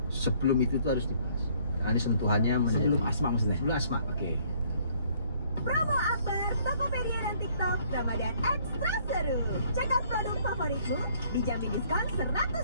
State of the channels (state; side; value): inverted; both; correlation -0.62